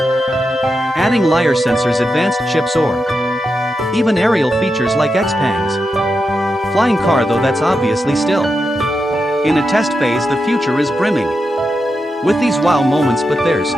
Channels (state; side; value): normal; both; correlation 0.87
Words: adding LiDAR sensors, advanced chips, or even aerial features like Xpeng's flying car, though that's obviously still in a test phase. The future is brimming with these wow moments, but there's